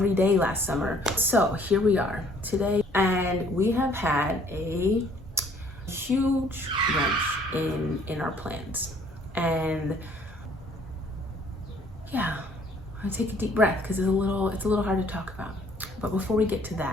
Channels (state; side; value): normal; both; correlation 0.59